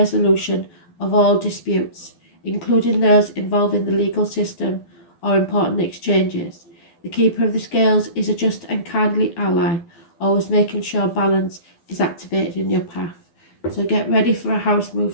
of all disputes, including those involving the legal system or important exchanges. The keeper of the scales is a just and kindly ally, always making sure balance is activated in your path. So get ready for a house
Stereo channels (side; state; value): right; late; 12 ms